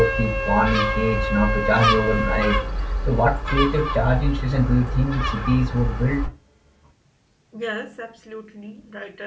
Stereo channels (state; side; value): identical; both; correlation 1.00